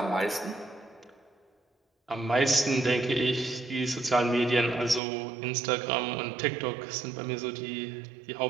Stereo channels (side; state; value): left; drops out; at 5.0 s